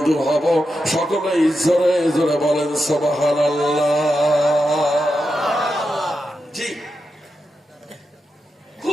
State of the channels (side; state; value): both; normal; correlation 0.88